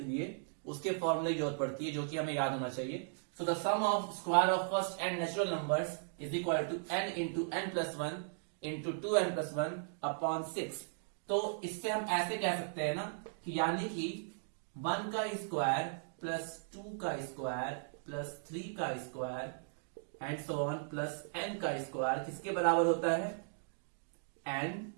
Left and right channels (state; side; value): silent; left; digital silence